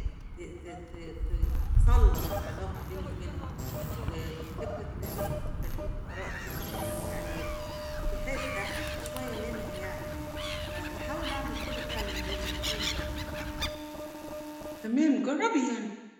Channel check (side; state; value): both; identical; correlation 1.00